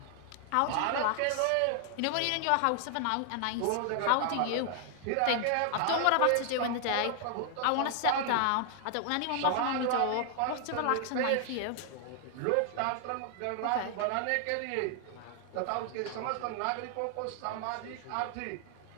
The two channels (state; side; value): different; both; correlation 0.00